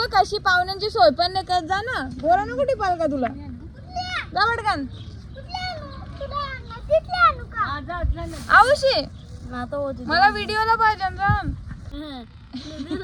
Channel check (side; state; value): both; identical; correlation 1.00